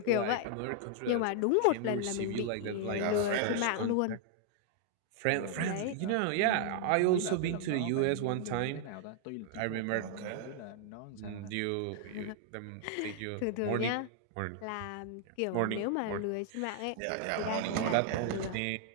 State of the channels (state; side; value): different; both; correlation 0.00